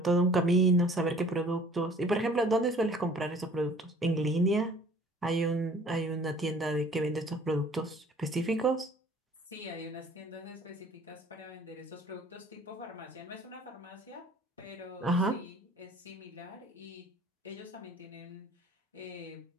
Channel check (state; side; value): normal; both; correlation 0.52